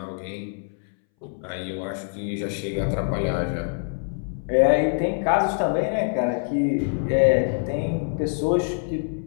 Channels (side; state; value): right; silent; 62 dB below the other